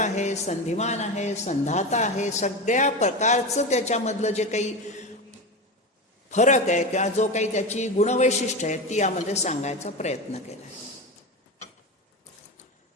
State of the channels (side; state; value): both; normal; correlation 0.22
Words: संधिमान आहे, संधाता आहे. सगळ्या प्रकारचं त्याच्यामधलं जे काही फरक आहे किंवा जो काही त्याची गुणवैशिष्ट्य आहे ती यामध्ये सांगायचा प्रयत्न केला.